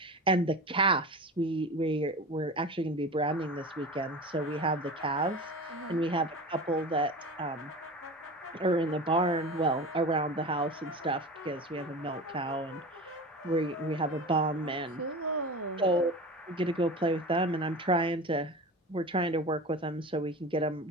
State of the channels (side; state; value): both; normal; correlation 0.31